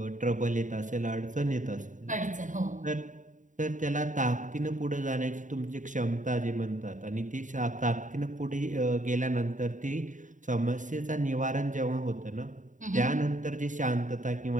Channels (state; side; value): late; left; 0.37 ms